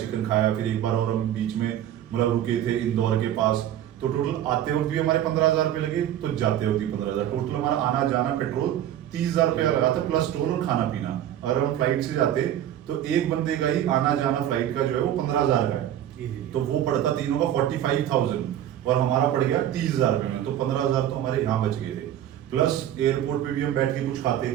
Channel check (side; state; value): left; quieter; 11.4 dB